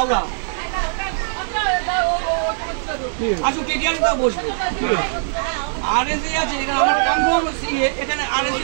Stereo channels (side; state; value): left; silent; digital silence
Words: আসো টিটিআর তো বসবে আরএসি আছে এখানে আমার কনফার্ম এখানে আরএসি